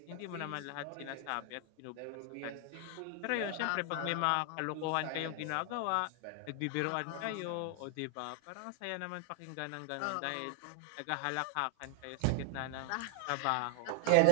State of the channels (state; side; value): different; both; correlation 0.00